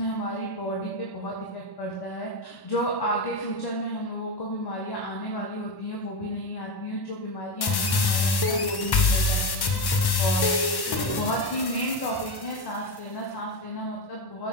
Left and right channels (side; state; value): right; late; 1.1 ms